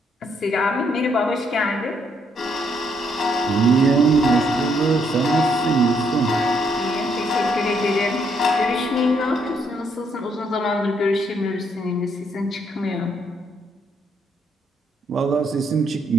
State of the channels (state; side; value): normal; both; correlation 0.72